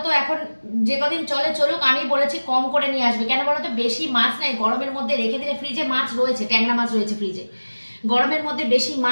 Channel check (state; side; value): inverted; both; correlation -1.00